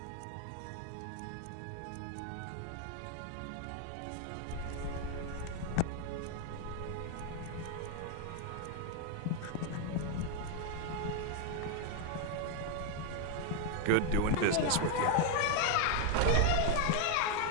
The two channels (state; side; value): different; both; correlation 0.00